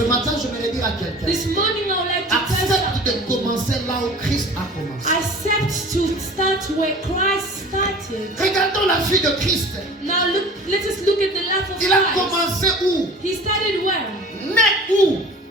matin, je vais dire à quelqu'un, This morning I would like to tell accepte someone, de commencer là où Christ a commencé. accept to start where Christ started. Regardons la vie de Christ. Now let us look at the life of Il a Christ. commencé où? He started where? Né où?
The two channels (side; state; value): both; normal; correlation 0.43